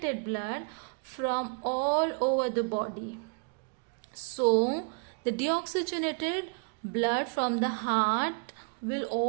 blood from all over the body. So the deoxygenated blood from the heart will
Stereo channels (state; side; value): quieter; left; 36.1 dB